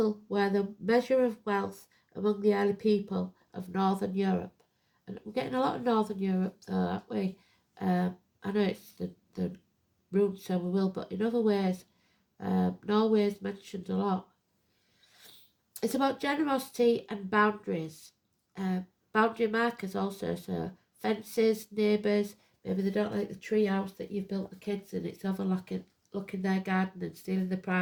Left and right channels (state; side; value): identical; both; correlation 1.00